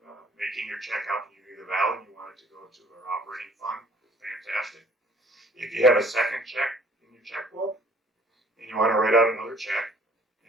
making your check out to Unity of the Valley and you want it to go to our operating fund, fantastic. If you have a second check in your checkbook and you want to write out another check,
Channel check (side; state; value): both; normal; correlation 0.56